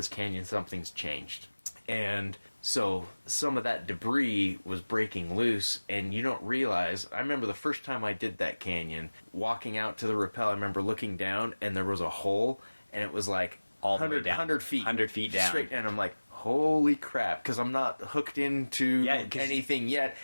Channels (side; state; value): both; inverted; correlation -1.00